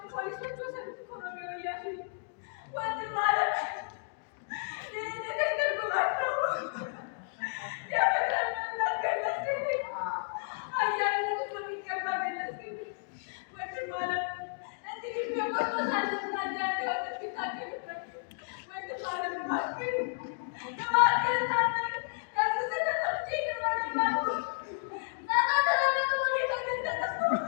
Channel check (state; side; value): silent; right; digital silence